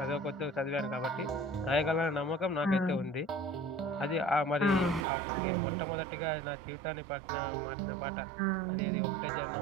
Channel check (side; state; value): left; drops out; at 5.1 s